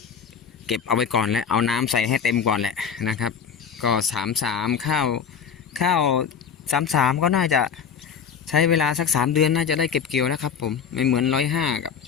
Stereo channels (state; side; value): quieter; right; 7.1 dB